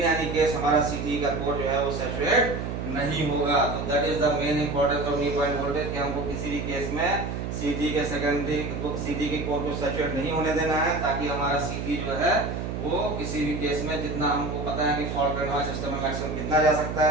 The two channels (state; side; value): noise; right; hum, 4 dB below the sound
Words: एनी केस हमारा सीटी का कोर जो है वो सैचुरेट नहीं होगा। तो that is the main importance of knee point voltage कि हमको किसी भी केस में सीटी के सेकेंडरी सीटी के कोर को सैचुरेट नहीं होने देना है, ताकि हमारा सीटी जो है वो किसी भी केस में जितना हमको पता है कि फॉल्ट करंट हमारे सिस्टम में मैक्सिमम कितना जा सकता